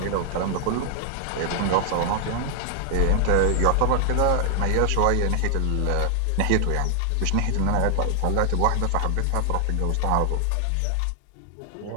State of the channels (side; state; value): both; different; correlation 0.00